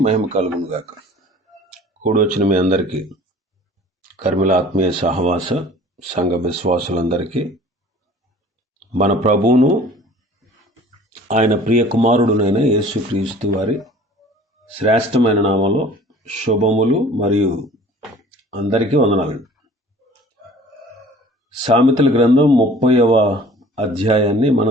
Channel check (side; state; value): both; normal; correlation 0.48